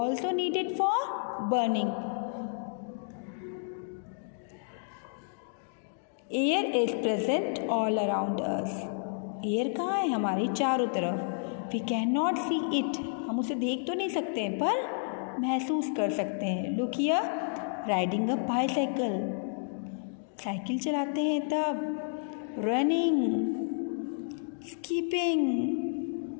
needed for burning. Air is present all around us. Air कहाँ है? हमारे चारों तरफ. We cannot see it. हम उसे देख तो नहीं सकते हैं पर महसूस कर सकते हैं. Look here, riding a bicycle. Cycle चलाते हैं तब. Running, skipping.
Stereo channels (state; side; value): silent; right; digital silence